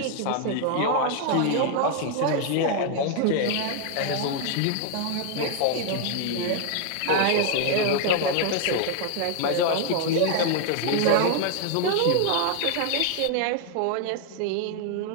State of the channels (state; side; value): different; both; correlation 0.00